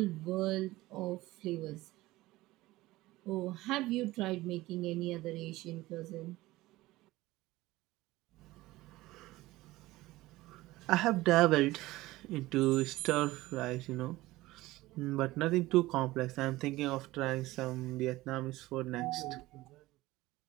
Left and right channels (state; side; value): quieter; left; 18.3 dB